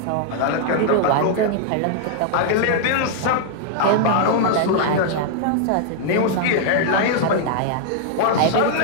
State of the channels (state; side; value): different; both; correlation -0.01